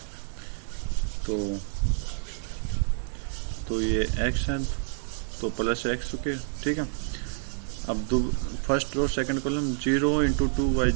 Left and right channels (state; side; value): silent; left; 59 dB below the other